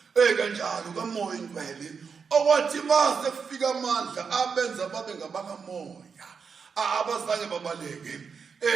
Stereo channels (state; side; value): quieter; left; 5.9 dB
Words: kanjalo kamoya ingcwele okwathi base kufika amandla abenza babe ngabakamoya abazange babaleke